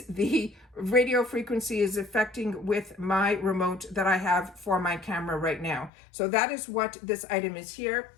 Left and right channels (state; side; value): drops out; right; at 5.9 s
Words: the radio frequency is affecting with my remote that I have for my camera right now. So that is what this item is here.